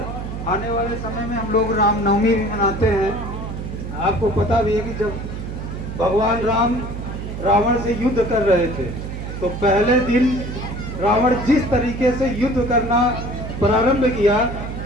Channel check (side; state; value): right; noise; hum, 7 dB below the sound